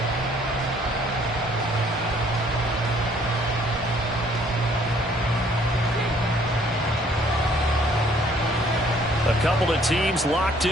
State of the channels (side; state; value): both; normal; correlation 0.61